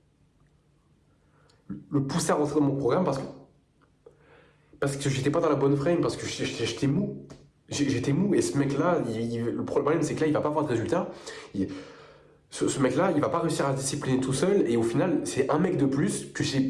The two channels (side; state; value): both; identical; correlation 1.00